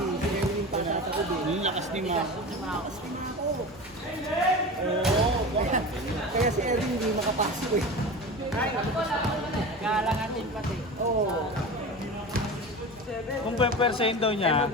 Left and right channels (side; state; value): both; normal; correlation 0.30